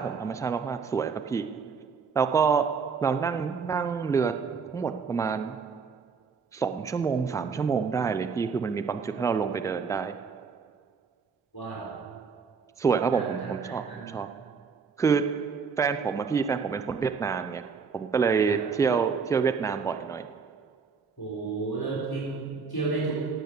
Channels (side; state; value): left; quieter; 5.5 dB